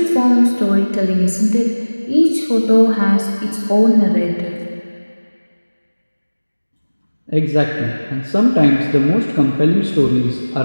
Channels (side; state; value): both; inverted; correlation -1.00